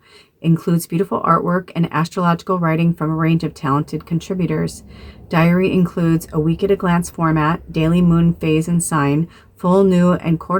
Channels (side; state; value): both; identical; correlation 1.00